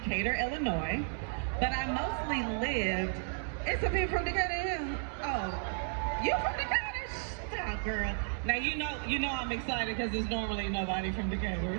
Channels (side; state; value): left; silent; 56 dB below the other